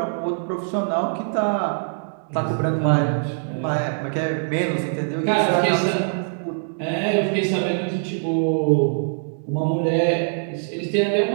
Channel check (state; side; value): silent; left; digital silence